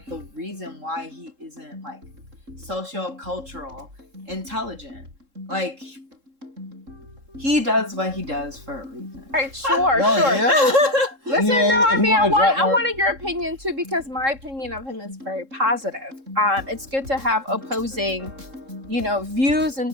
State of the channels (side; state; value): left; late; 3.7 ms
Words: the reason why he isn't like socio-cultural intelligent. Like he does what he does for a reason. All right, sure. Yeah. Listen, Yeah, no, I if mean, you I wanna drop more- wanted your opinion too, because my opinion of him is very positive. It's good to have opposing, views